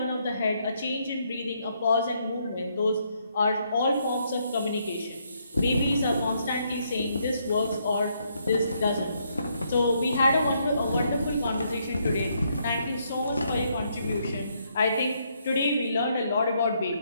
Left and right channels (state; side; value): inverted; both; correlation -0.74